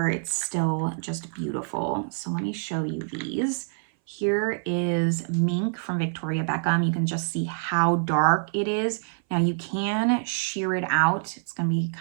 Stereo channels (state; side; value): silent; left; 59 dB below the other